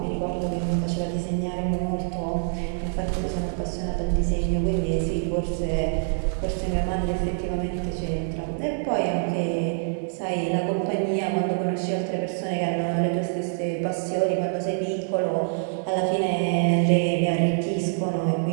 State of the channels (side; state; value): left; silent; digital silence